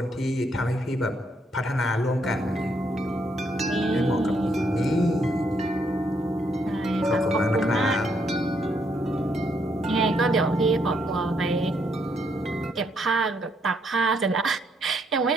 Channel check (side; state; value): both; normal; correlation 0.74